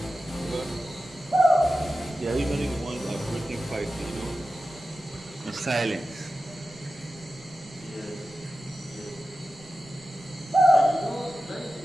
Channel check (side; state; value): right; noise; rumble, 23 dB below the sound